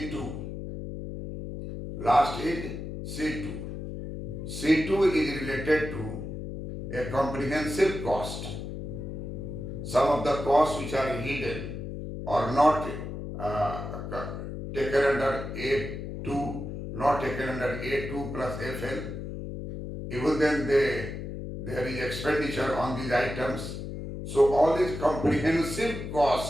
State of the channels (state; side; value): noise; left; hum, 7 dB below the sound